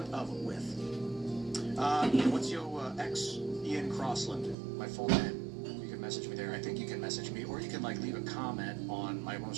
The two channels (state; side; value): drops out; left; at 4.5 s